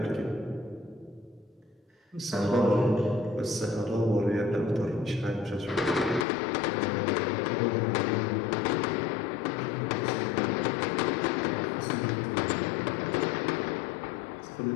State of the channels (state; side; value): drops out; right; at 6.2 s